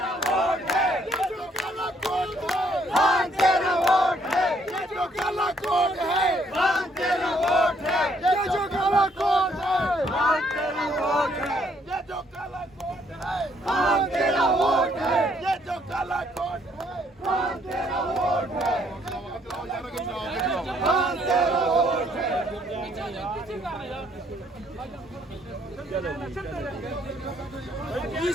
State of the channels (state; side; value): normal; both; correlation 0.68